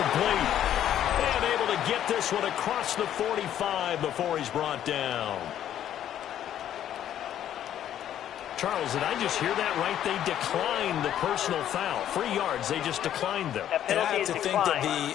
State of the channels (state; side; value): quieter; right; 10.9 dB